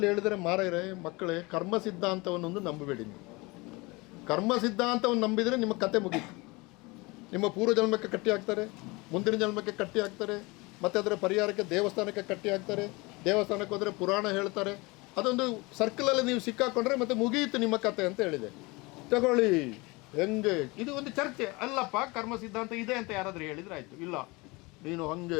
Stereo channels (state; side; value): quieter; right; 24.8 dB